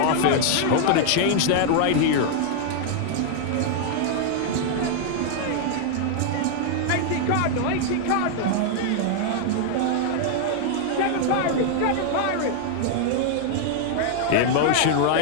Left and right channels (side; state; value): both; different; correlation -0.01